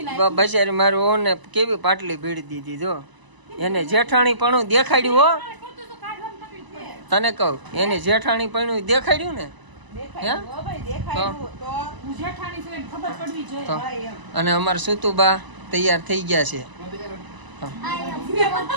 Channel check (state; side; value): late; left; 1.0 ms